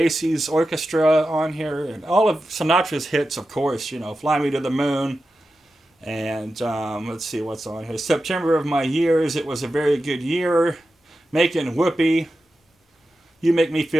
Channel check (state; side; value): normal; both; correlation 0.91